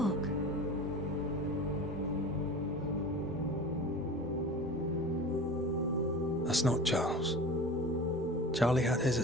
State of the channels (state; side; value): normal; both; correlation 0.35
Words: That's not Charles. Charlie had his